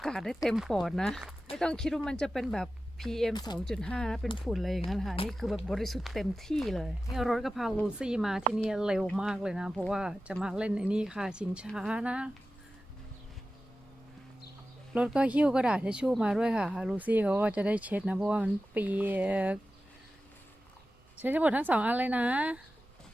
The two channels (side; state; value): both; normal; correlation 0.94